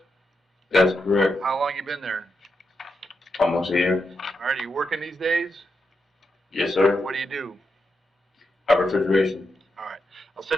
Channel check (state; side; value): normal; both; correlation 0.84